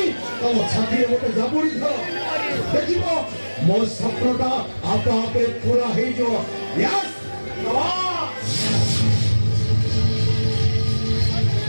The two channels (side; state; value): both; inverted; correlation -1.00